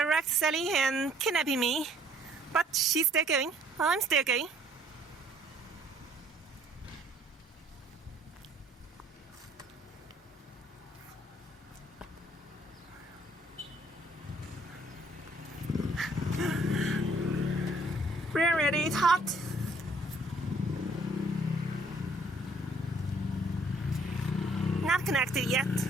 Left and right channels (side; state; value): both; normal; correlation 0.61